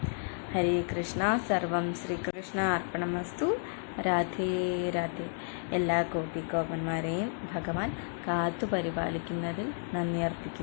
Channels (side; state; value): right; silent; 57 dB below the other